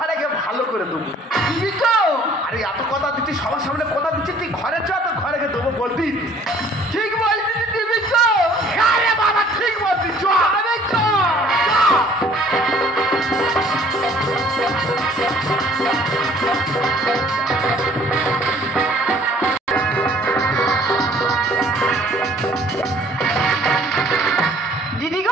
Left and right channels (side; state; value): both; normal; correlation 0.55